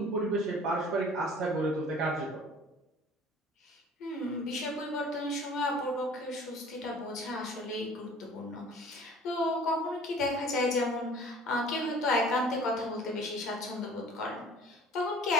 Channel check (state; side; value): normal; both; correlation 0.48